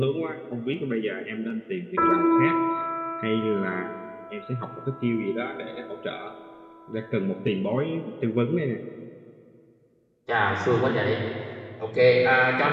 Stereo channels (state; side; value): identical; both; correlation 1.00